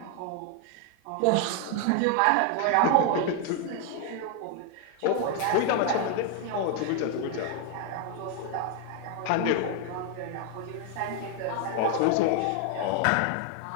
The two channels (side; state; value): both; different; correlation 0.01